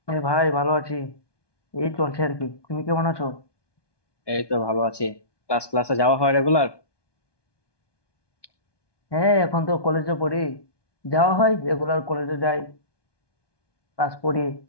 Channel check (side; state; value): right; late; 1.2 ms